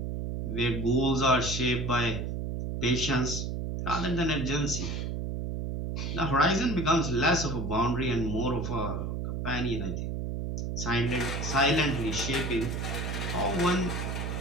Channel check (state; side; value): noise; right; hum, 3 dB below the sound